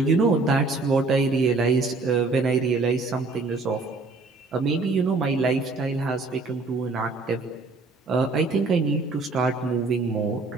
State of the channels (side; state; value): left; quieter; 3.7 dB